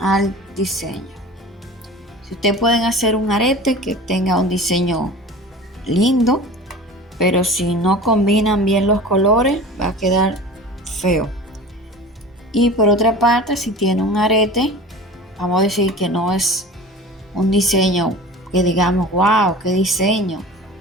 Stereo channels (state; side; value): normal; both; correlation 0.38